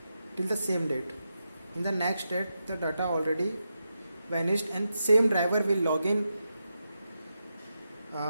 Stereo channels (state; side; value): inverted; both; correlation -0.87